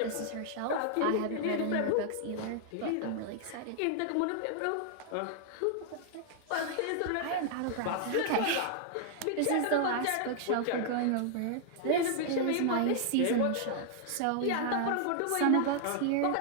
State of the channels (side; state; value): both; different; correlation -0.01